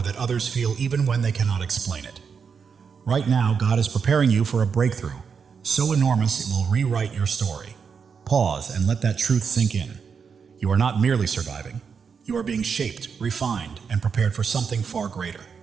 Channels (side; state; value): left; quieter; 6.1 dB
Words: that others feel even when they cannot explain it. Right now, God is preparing you for a breakthrough, so enormous it will rewrite your story. Pause and let that truth sink in. You are not merely surviving. You are being shaped, refined, and prepared for something far greater.